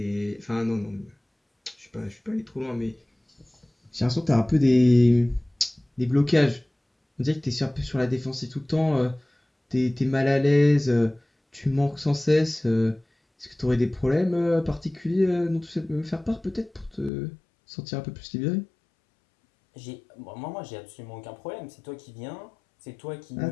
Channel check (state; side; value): drops out; right; at 17.1 s